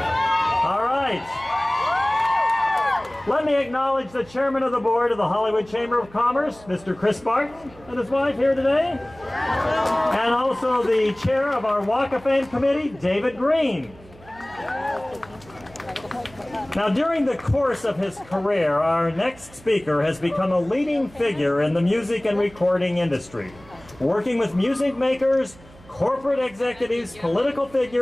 All right. Let me acknowledge the Chairman of the Board of the Hollywood Chamber of Commerce, Mr. Chris Barton, and his wife here today. And also the Chair of our Walk of Fame Committee, David Green. Now, during the course of his career, our next speaker has become a leading figure in the music and recording industry, working with music makers, corporate executives, political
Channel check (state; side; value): noise; right; hum, 23 dB below the sound